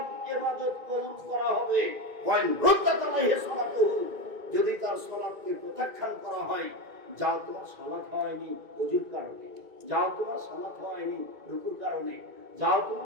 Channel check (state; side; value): late; left; 2.2 ms